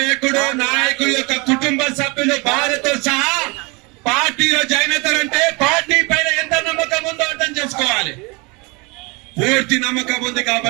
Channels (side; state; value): left; quieter; 28.2 dB